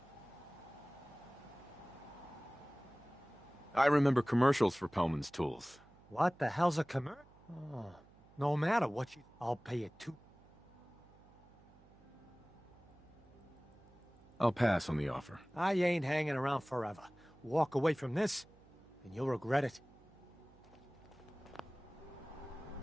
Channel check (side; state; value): right; noise; hum, 25 dB below the sound